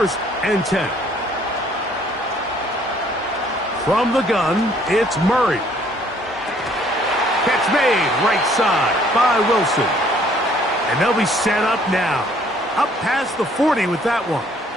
and 10. From the gun, it's Murray. Catch made right side by Wilson. And they'll be set up now. Up past the 40 with that one.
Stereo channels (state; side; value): normal; both; correlation 0.61